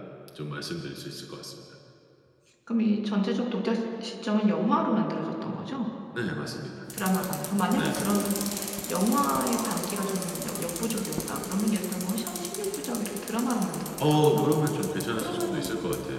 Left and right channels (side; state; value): both; identical; correlation 1.00